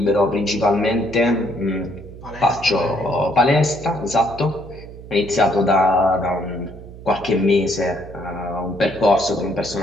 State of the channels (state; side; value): noise; right; hum, 16 dB below the sound